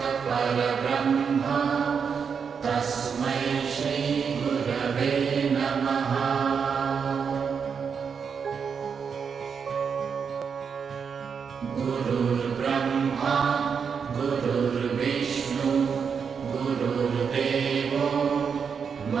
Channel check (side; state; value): left; quieter; 6.4 dB